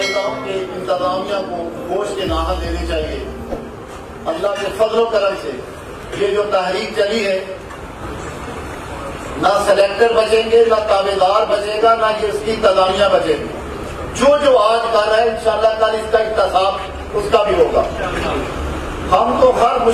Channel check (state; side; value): identical; both; correlation 1.00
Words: ہوں کہ انتظامیہ کو گوشت کے ناحل دینے چاہیے، اللہ کے فضل و کرم سے یہ جو تحریک چلی ہے، نہ سلیکٹر بچیں گے، نہ تابع دار بچے گا، نہ یہ اس کی انتظامیہ بچے گی، جو آج کر رہا ہے انشاءاللہ کل اس کا احتساب اس کا بھی ہوگا۔ ہم تو ہر